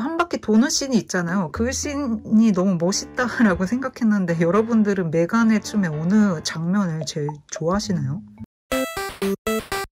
바퀴 도는 씬이 있잖아요. 그 씬이 너무 멋있다라고 생각했는데 여러분들은 메간의 춤의 어느 장면을 제일 좋아하시나요?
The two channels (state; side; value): identical; both; correlation 1.00